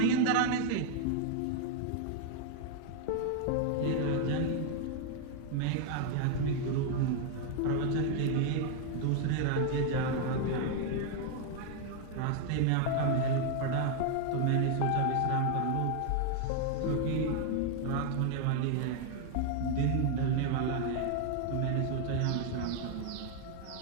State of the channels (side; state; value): both; different; correlation 0.00